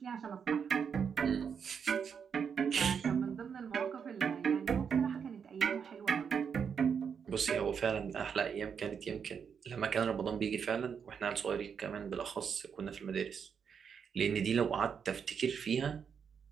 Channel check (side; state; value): left; quieter; 6.9 dB